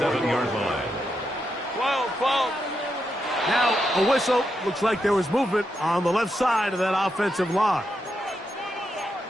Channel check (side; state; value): both; normal; correlation 0.83